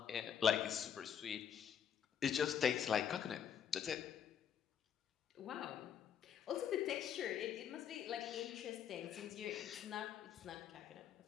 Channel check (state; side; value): quieter; right; 8.5 dB